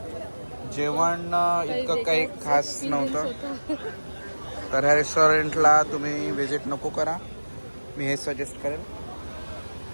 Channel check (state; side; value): inverted; both; correlation -1.00